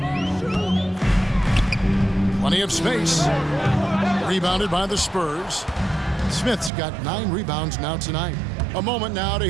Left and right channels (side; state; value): left; drops out; at 6.7 s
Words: Plenty of space. Rebounded by the Spurs. Smith's got 9 rebounds now tonight. A moment now to